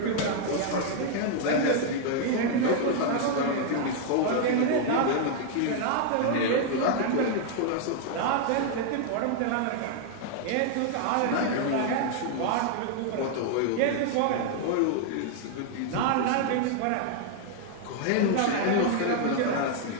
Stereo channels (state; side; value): different; both; correlation 0.00